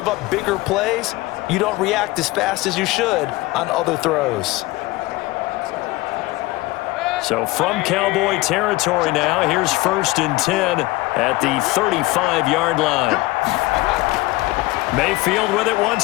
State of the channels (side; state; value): right; quieter; 20.4 dB